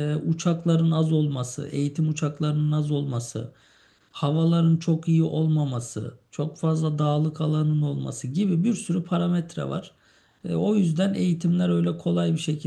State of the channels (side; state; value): both; identical; correlation 1.00